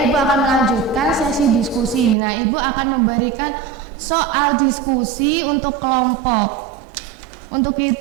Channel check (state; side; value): drops out; left; at 2.1 s